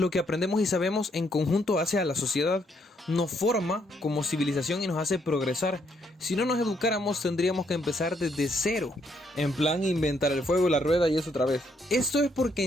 que aprendemos y sabemos en conjunto hace a la sociedad, nos forma como civilización y nos hace progresar. Si no nos educáramos tendríamos que empezar desde cero, en plan inventar el fuego, la rueda y eso otra vez. Esto es porque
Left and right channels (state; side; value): normal; both; correlation 0.72